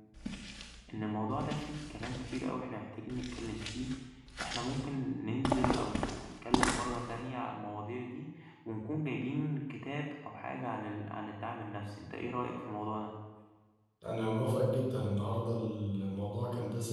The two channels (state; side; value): identical; both; correlation 1.00